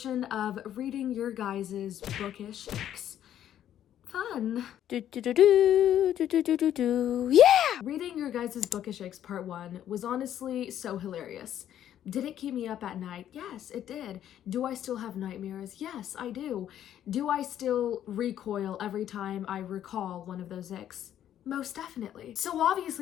of reading your guys' bookish icks. Fun. Yeah! Reading your guys' bookish icks part 1 was honestly so hilarious. Did it keep me up at night? Yes, it did. Do I still have nightmares? Yes, I do. Do I still recoil every time I recall one of those icks? Most definitely. So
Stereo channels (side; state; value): right; quieter; 10.9 dB